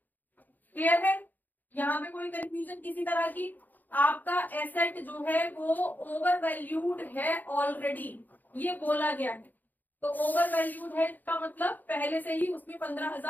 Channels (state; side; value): late; right; 0.085 ms